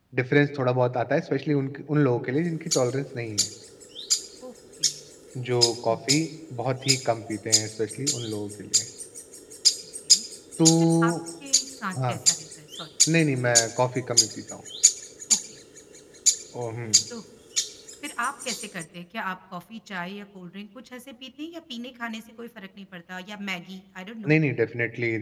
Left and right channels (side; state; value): both; identical; correlation 1.00